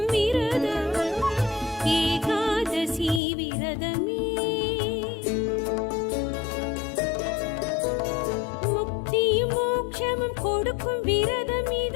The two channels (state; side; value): drops out; right; at 3.2 s